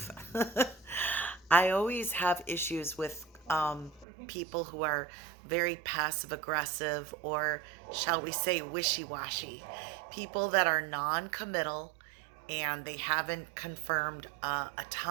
I always have issues with people who are very passive aggressive, or shall we say wishy washy. People that are non committal and they haven't confirmed a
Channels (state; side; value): drops out; left; at 4.0 s